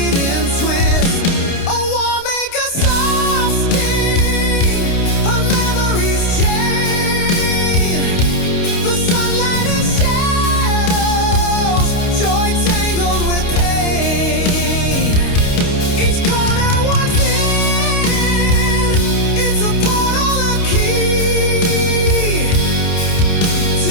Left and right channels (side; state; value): right; late; 29 ms